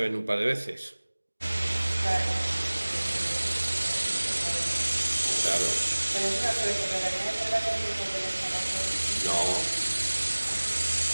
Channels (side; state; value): both; inverted; correlation -1.00